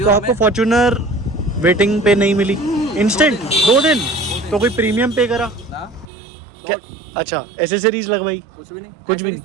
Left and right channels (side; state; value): left; drops out; at 6.1 s